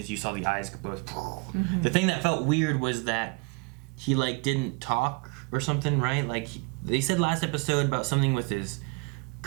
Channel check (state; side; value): quieter; left; 29.6 dB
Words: you saw the eyes go both. Mm-hmm. The thing that felt weird was that he didn't talk or something, right? Like they said last episode about something with his